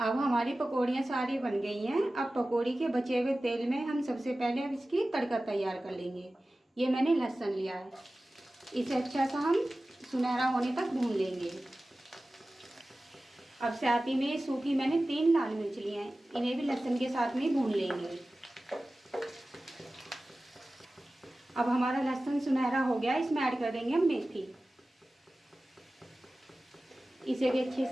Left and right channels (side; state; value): both; normal; correlation 0.96